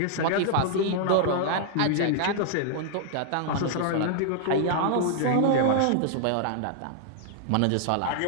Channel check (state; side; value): different; both; correlation -0.01